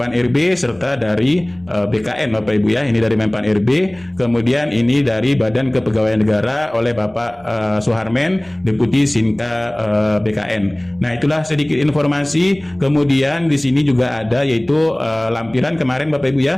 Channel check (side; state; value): right; noise; rumble, 28 dB below the sound